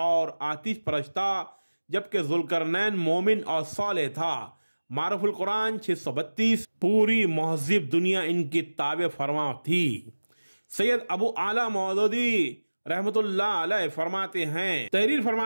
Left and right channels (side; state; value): both; inverted; correlation -1.00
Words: आतिश परस्त था, जबकि जुल्करनैन मोमिन और सालेह था। मारुफुल कुरान 632। पूरी महज़िब दुनिया इनकी ताबे फरमा थी। सैयद अबू आला मौदूदी रहमतुल्लाह अलैह फरमाते हैं, तहरीर